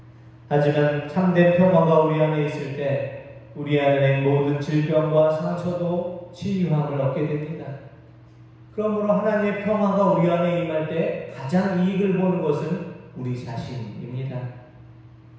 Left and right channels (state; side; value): identical; both; correlation 1.00